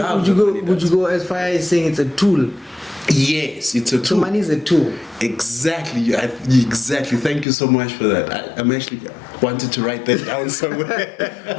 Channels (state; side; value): drops out; right; at 7.5 s